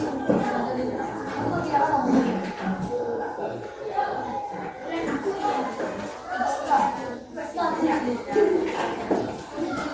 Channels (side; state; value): both; identical; correlation 1.00